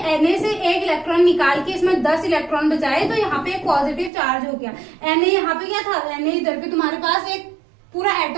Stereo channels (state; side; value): drops out; left; at 4.1 s